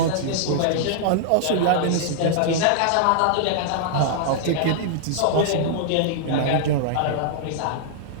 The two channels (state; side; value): different; both; correlation -0.01